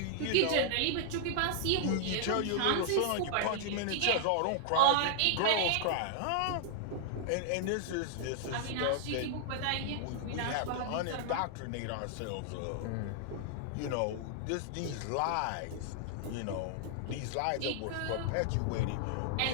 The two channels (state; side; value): different; both; correlation -0.01